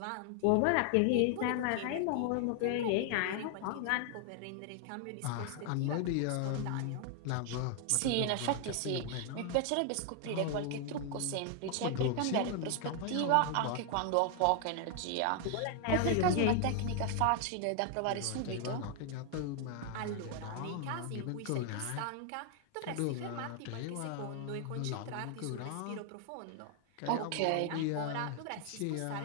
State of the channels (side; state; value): both; different; correlation 0.00